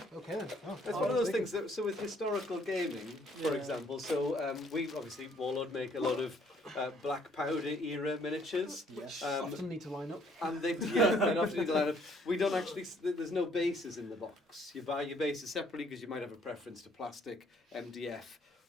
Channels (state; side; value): normal; both; correlation 0.64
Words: Okay then. It's one of those things that, so with historical gaming, for example, so we obviously, Warlord make a lot of black powder era miniatures. Yes. Often need to line up. And they often need to line up. We don't actually, there's no bases in the box. You buy your bases separately because you might have a preference to plastic, MDF,